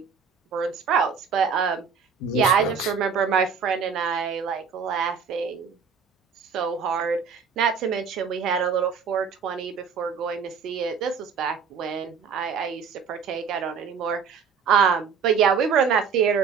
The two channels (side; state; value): left; quieter; 6.2 dB